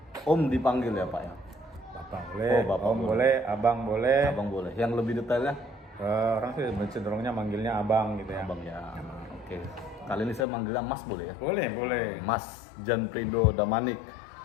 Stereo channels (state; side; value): drops out; right; at 10.5 s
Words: Om dipanggil ya Pak ya? Bapak boleh, Oh, Bapak Om boleh. boleh, Abang boleh. Abang boleh. Yang lebih detailnya? Orang sih cenderungnya manggilnya Abang gitu ya. Abang ya. Oke. Kali ini saya manggilnya Mas boleh ya? Boleh, boleh. Mas Janprido Damanik.